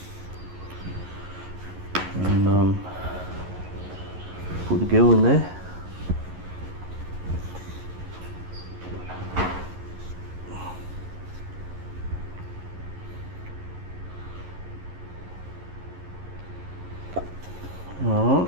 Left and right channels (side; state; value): left; late; 11 ms